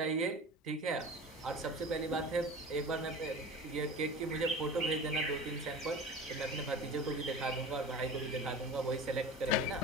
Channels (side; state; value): both; normal; correlation 0.35